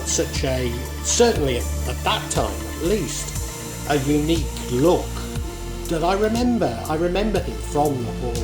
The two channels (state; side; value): identical; both; correlation 1.00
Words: such a, certainly at that time at least, a unique look that I remember him from the